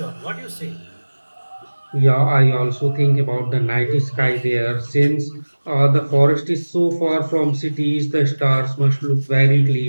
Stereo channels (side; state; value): both; inverted; correlation -1.00